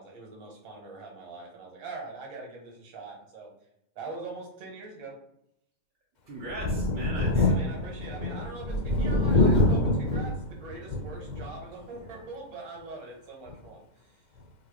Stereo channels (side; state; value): left; late; 2.1 ms